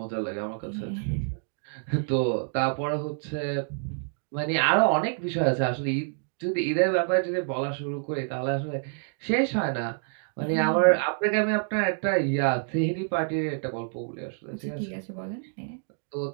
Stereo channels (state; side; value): silent; left; digital silence